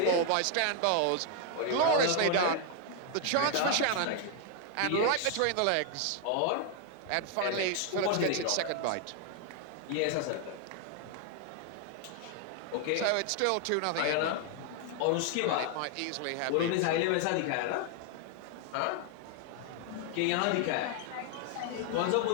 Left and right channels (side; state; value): both; different; correlation 0.00